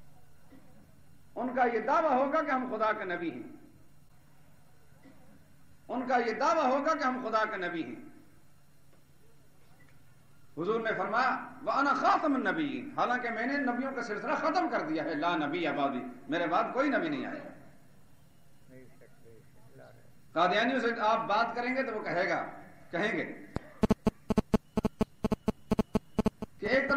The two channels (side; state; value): both; identical; correlation 1.00